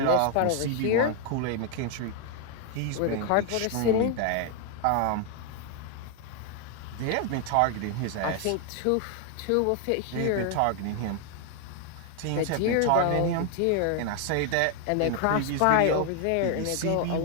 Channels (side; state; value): both; different; correlation 0.00